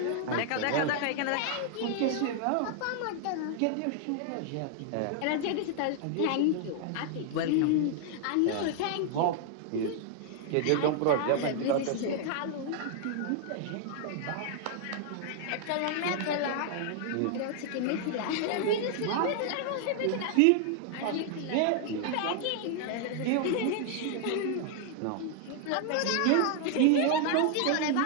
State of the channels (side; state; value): both; different; correlation 0.00